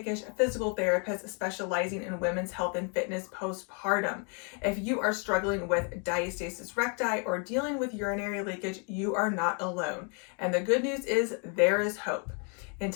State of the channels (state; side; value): quieter; right; 38.1 dB